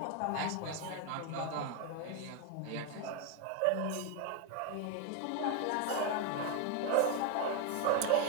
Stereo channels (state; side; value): different; both; correlation 0.01